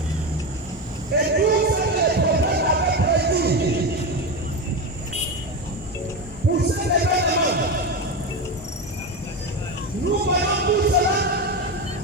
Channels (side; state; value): both; normal; correlation 0.17